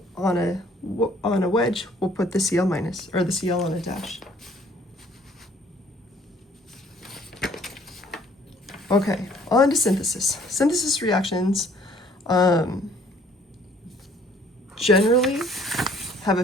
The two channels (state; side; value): normal; both; correlation 0.58